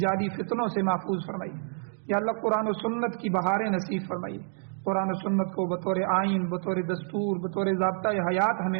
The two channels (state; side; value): silent; left; 59 dB below the other